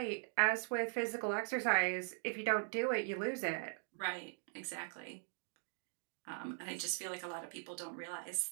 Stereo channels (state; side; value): silent; left; 51 dB below the other